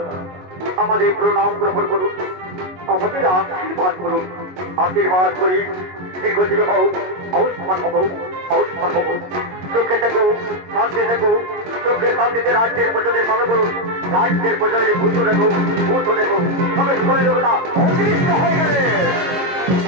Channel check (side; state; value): left; late; 22 ms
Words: আমাদের প্রণাম গ্রহণ করুন, আমাদের আশীর্বাদ করুন, আশীর্বাদ করি দীর্ঘজীবী হও, আয়ুষ্মান হব, আয়ুষ্মান হব, সুখে থেকো, শান্তি থেকো, সুখে শান্তিতে রাজ্যের প্রজাদের পালন করুন, রাজ্যের প্রজাদের ভূত রেখো, ভূত রেখো। ভগবতী দেবতা অদৃশ্য হয়ে গেলে